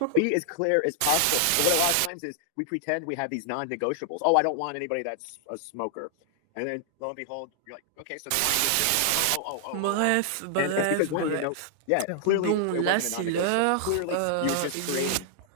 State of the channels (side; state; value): both; different; correlation -0.01